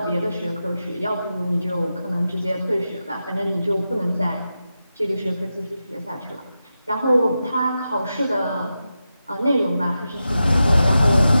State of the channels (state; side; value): inverted; both; correlation -0.90